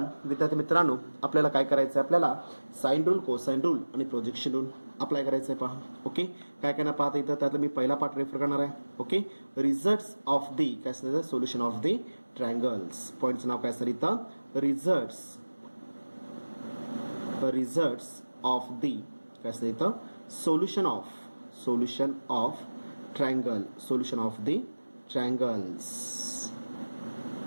विद्यार्थी मित्रांनो आपल्याला काय करायचं आहे, आपल्याला साइन रूल, कोसाइन रूल आणि प्रोजेक्शन रूल अप्लाय करायचं आहे पहा. ओके, काय काय ना पाहता इथं त्यातलं मी पहिला पार्ट रेफर करणार आहे. ओके, रिझल्ट्स ऑफ दी काय असतं, सोल्युशन ऑफ दी ट्रायंगल्स. पॉईंटचं नाव काय असतं इथं, रिझल्ट्स ऑफ दी काय असतं इथं, solution of triangle, solution of the triangles,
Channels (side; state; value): both; inverted; correlation -1.00